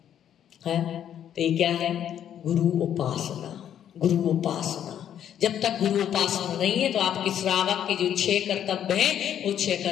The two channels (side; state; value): right; quieter; 9.9 dB